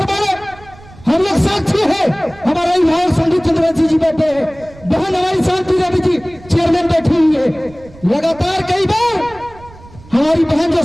ने हम लोग साक्षी है, हमारा अभिभावक संदीप चंद्रवंशी जी बैठे हैं, बहन हमारी शांति रवि जी चेयरमैन बैठी हुई है। लगातार कई बार हमारी बहन जो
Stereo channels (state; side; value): noise; right; rumble, 22 dB below the sound